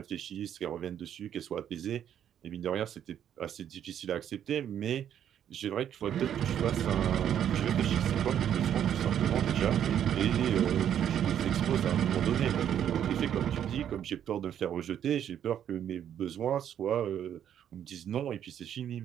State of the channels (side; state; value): left; quieter; 9.8 dB